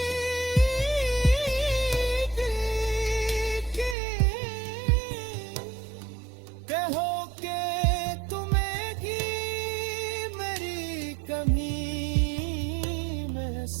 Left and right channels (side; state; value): left; drops out; at 4.0 s